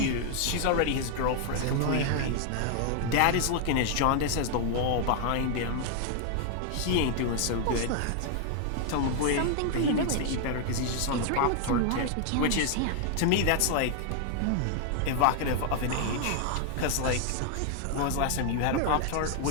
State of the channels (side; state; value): both; different; correlation 0.00